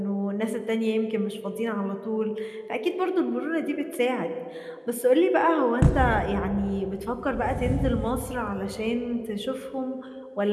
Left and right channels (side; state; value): both; identical; correlation 1.00